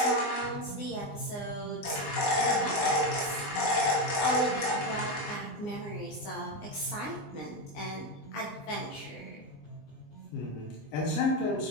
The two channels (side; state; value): right; late; 20 ms